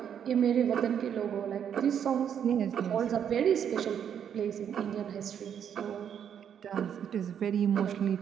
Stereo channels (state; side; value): quieter; left; 8.6 dB